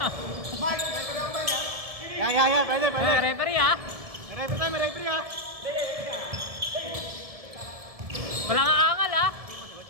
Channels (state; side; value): late; left; 1.7 ms